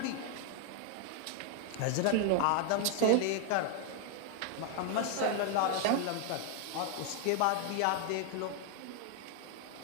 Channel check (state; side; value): different; both; correlation 0.00